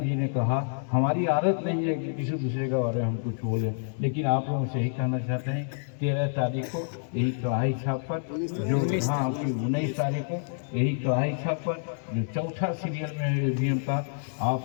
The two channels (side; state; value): right; silent; digital silence